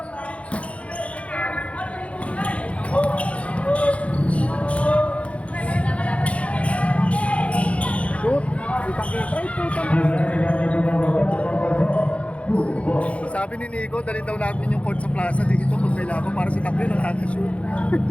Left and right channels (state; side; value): late; right; 0.063 ms